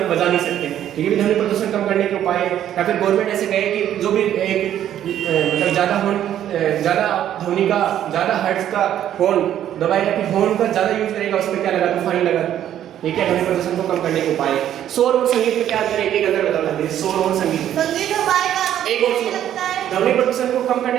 बजा नहीं सकते, तो ये भी ध्वनि प्रदूषण कम करने के उपाय है। या फिर गवर्नमेंट ऐसे कहे कि जो भी एक मतलब ज़्यादा ध्वनि का, ज़्यादा हर्ट्ज का हॉर्न दबाएगा, कि हॉर्न का ज़्यादा यूज करेगा उस पर क्या लगा दो, फाइन लगा दो। ये क्या ध्वनि प्रदूषण को कम करने के उपाय है। शोर और संगीत में क्या अंतर है, एक अंतर बता दीजिए, शोर और संगीत। एक और ध्वनि प्रदूषण को कम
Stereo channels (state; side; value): quieter; left; 11.0 dB